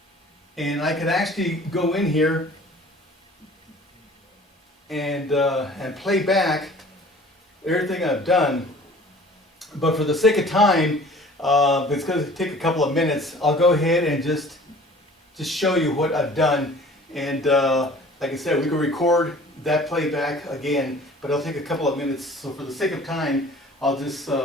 And I can actually go in here and play back everything I've done. But for the sake of time, it's going to take a couple of minutes. I'll go ahead and just show you what I've done. And like I said, we can record that playback again, but it'll take a couple of minutes. So for the sake of time, I'll just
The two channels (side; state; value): both; normal; correlation 0.48